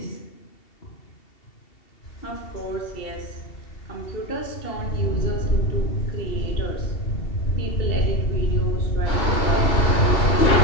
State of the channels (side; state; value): right; late; 2.7 ms